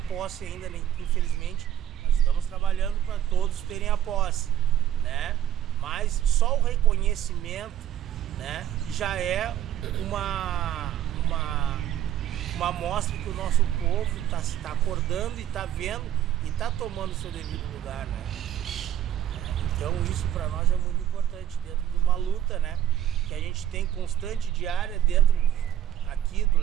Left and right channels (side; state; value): left; quieter; 11.1 dB